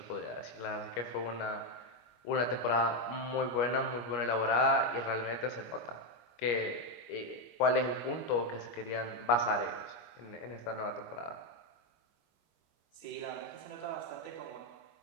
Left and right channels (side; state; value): right; late; 25 ms